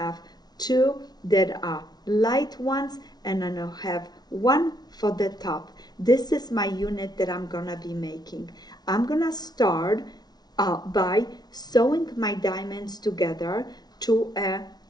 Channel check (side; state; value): right; late; 0.19 ms